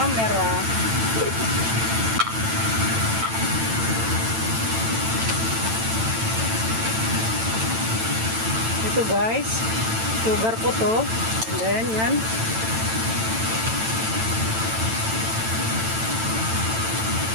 Ito, guys, sugar po to. Then yan,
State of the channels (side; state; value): left; late; 9.0 ms